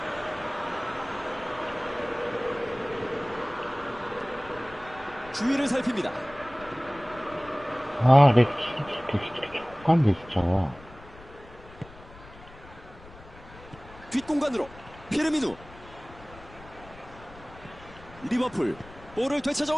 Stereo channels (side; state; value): left; noise; rumble, 20 dB below the sound